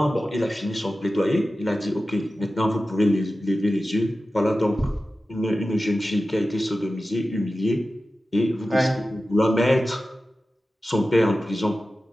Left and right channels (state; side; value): normal; both; correlation 0.94